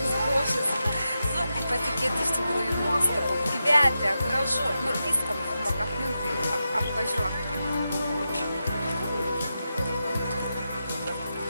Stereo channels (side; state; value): both; inverted; correlation -0.89